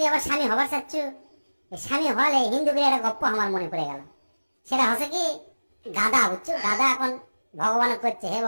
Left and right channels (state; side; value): inverted; both; correlation -1.00